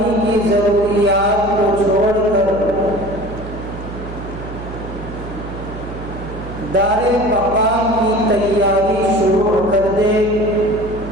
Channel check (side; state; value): right; noise; hum, 11 dB below the sound